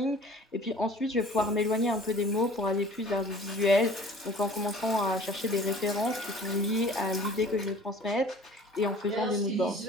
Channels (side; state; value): both; normal; correlation 0.48